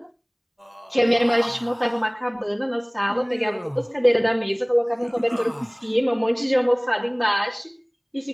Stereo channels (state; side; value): identical; both; correlation 1.00